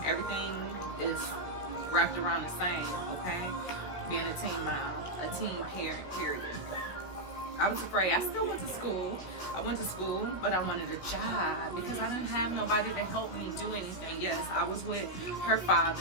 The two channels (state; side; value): late; right; 16 ms